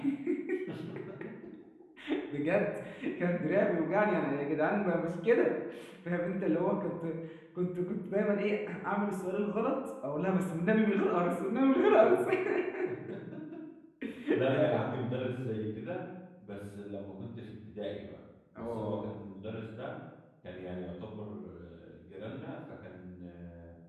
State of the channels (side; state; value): both; identical; correlation 1.00